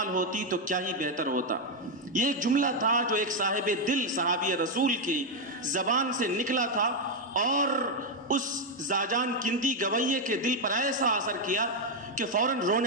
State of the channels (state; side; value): normal; both; correlation 0.02